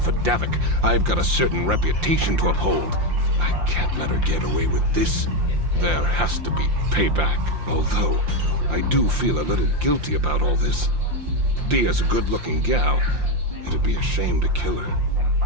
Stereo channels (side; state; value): left; late; 5.7 ms